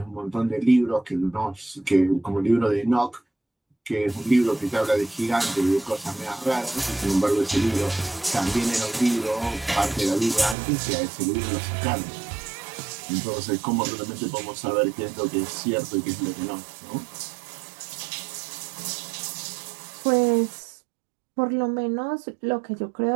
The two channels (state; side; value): drops out; left; at 10.6 s